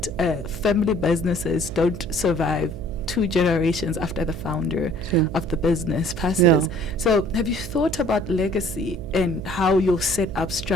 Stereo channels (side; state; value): right; noise; hum, 10 dB below the sound